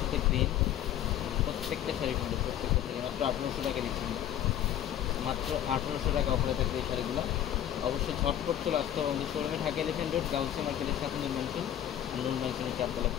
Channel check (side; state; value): right; quieter; 11.0 dB